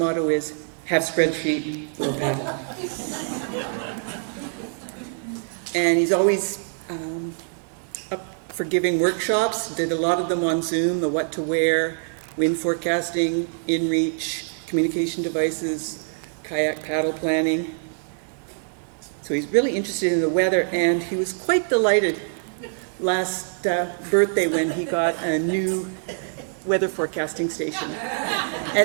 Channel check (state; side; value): silent; left; 55 dB below the other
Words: is, have spreadsheet, we'll paddle. And he's always up for giving workshops, did a lot of them on Zoom, the what to wear, wind forecasting, inReach, communication devices, kayak paddle planning. So he's really interested in the weather, and he was quite delighted last birthday when he got a new weather forecasting station.